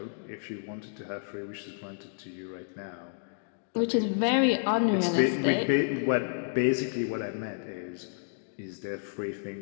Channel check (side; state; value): right; silent; digital silence